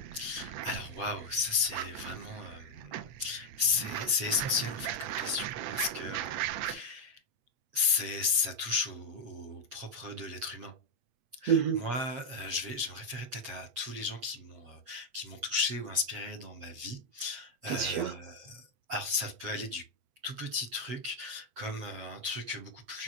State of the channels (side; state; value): left; late; 8.2 ms